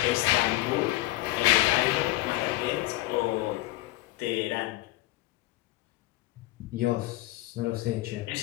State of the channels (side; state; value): right; quieter; 18.1 dB